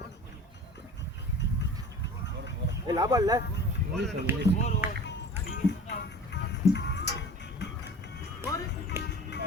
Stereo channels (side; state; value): both; normal; correlation 0.40